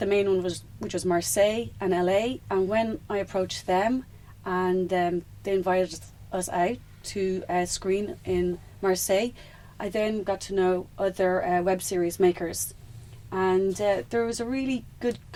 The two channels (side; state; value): both; identical; correlation 1.00